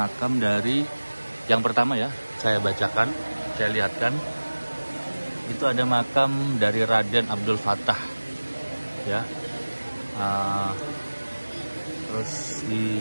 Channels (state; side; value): inverted; both; correlation -1.00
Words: dari yang pertama ya. Saya bacakan, saya lihatkan. Itu ada makam dari Raden Abdul Fatah, ya. Terus di